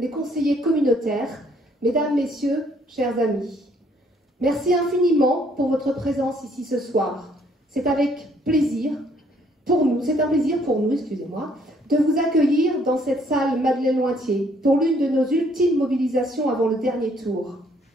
conseillers communautaires, Mesdames, Messieurs, chers amis. Merci infiniment pour votre présence ici ce soir. C'est avec plaisir pour nous, excusez-moi, de vous accueillir dans cette salle Madeleine-Lointier pour l'une de nos ultimes mobilisations avant le dernier tour.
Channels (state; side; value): normal; both; correlation 0.65